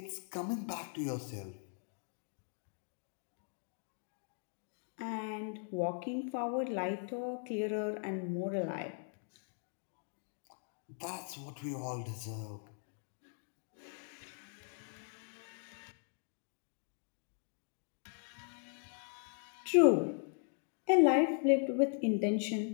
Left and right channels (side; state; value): right; silent; 52 dB below the other